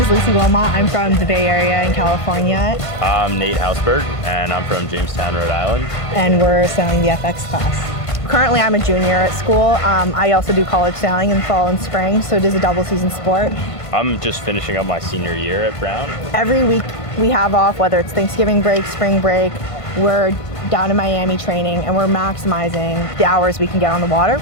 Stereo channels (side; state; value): right; late; 1.5 ms